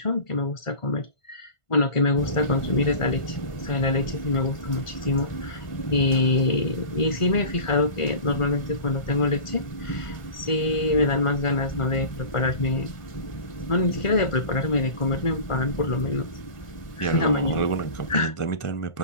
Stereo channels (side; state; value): right; late; 1.4 ms